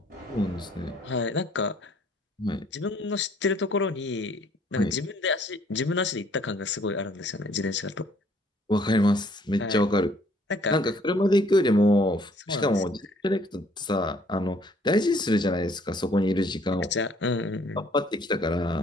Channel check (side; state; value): both; normal; correlation 0.61